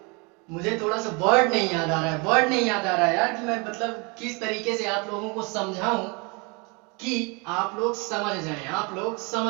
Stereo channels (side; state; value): left; quieter; 30.4 dB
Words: मुझे थोड़ा सा वर्ड नहीं याद आ रहा है यार कि मैं मतलब किस तरीके से आप लोगों को समझाऊं कि आप लोग समझ